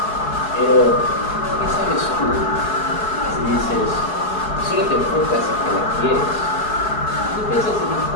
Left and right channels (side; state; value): right; late; 4.7 ms